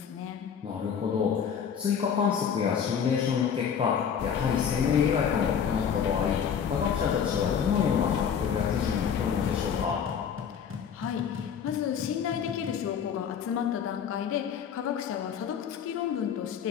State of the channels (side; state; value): right; quieter; 7.6 dB